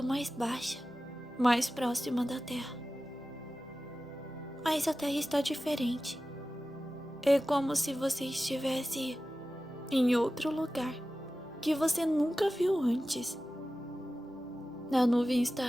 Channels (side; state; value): both; normal; correlation 0.94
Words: mais baixa, mais próxima da Terra. Mas a Terra está diferente. É como se você estivesse em outro lugar que você nunca viu antes. A nuvem